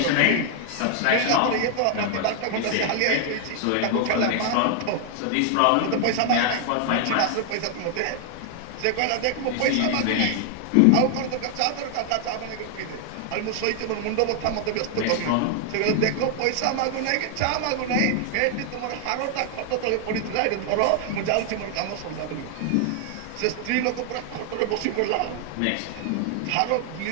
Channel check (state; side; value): different; both; correlation 0.00